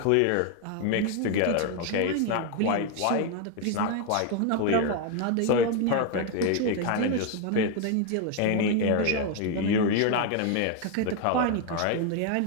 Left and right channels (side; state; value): both; different; correlation 0.01